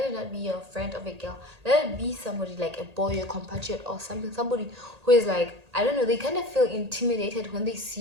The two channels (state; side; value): late; left; 1.8 ms